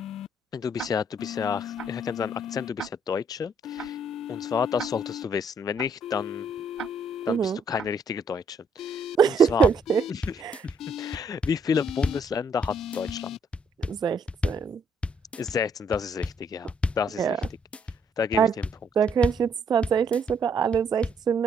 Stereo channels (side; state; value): both; normal; correlation 0.69